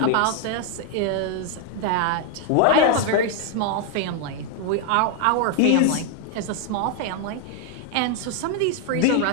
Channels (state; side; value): different; both; correlation 0.00